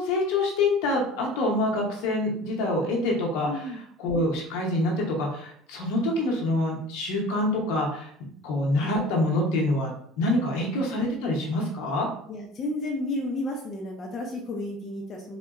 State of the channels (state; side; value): normal; both; correlation 0.40